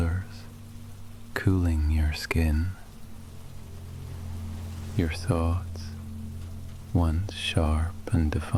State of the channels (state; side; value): identical; both; correlation 1.00